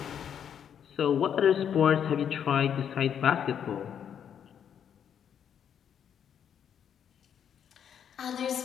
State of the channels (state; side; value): quieter; right; 8.6 dB